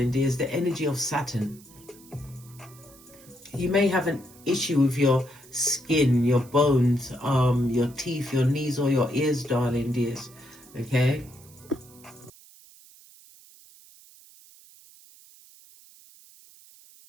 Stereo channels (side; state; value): right; noise; hiss, 23 dB below the sound